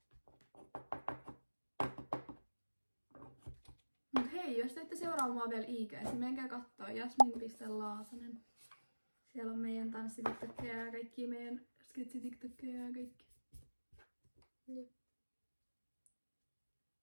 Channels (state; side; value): inverted; both; correlation -1.00